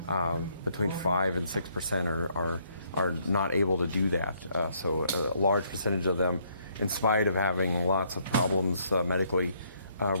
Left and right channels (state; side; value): inverted; both; correlation -0.69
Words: Between 5 and 6% are not able to do that. So a large percentage of them, in spite of having lots of problems medically,